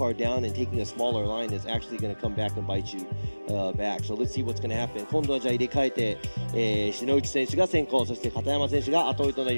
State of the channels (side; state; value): both; inverted; correlation -1.00